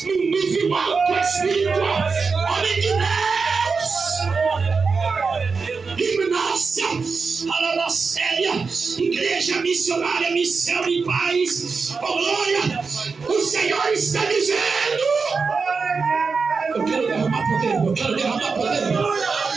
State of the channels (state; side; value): quieter; left; 4.8 dB